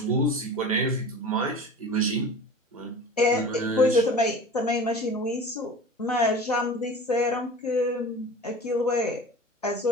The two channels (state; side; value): normal; both; correlation 0.37